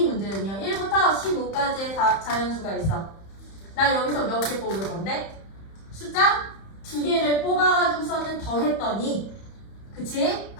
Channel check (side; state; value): right; late; 31 ms